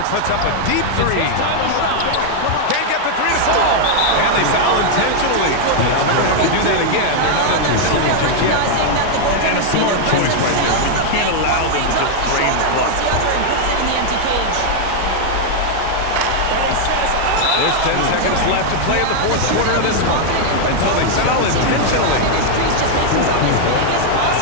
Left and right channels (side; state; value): both; different; correlation 0.00